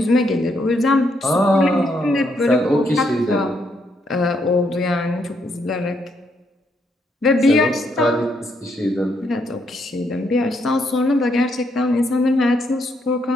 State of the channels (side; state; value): both; normal; correlation 0.76